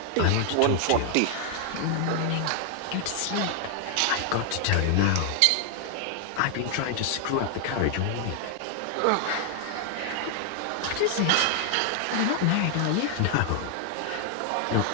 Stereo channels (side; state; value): both; different; correlation 0.00